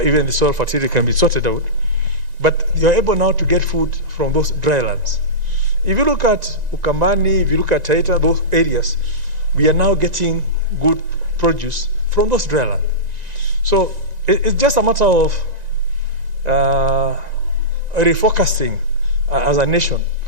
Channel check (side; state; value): left; late; 1.9 ms